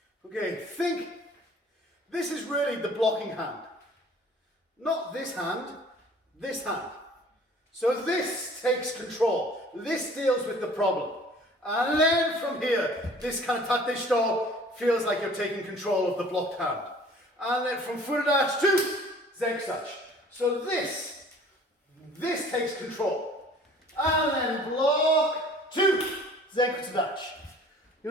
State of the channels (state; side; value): normal; both; correlation 0.50